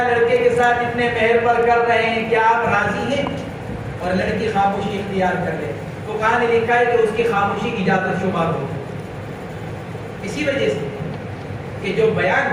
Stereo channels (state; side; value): identical; both; correlation 1.00